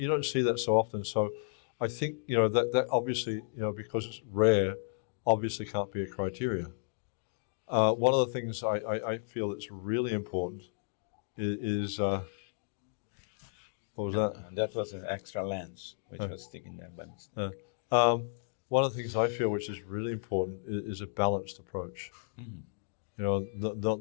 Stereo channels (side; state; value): right; silent; digital silence